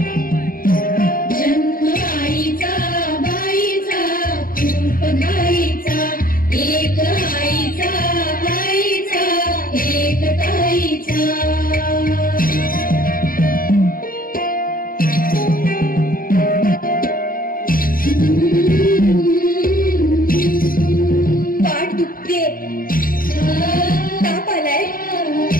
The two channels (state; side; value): late; right; 0.41 ms